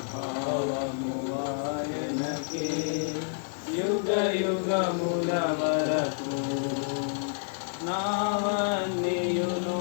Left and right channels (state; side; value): silent; right; 59 dB below the other